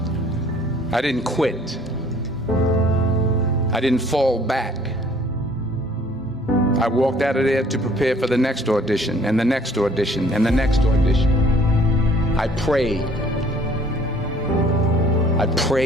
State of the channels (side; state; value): both; normal; correlation 0.57